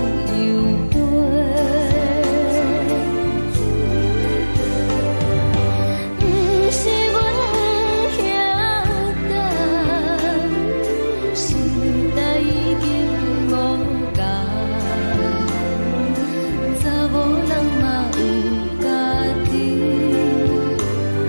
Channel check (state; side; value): inverted; both; correlation -1.00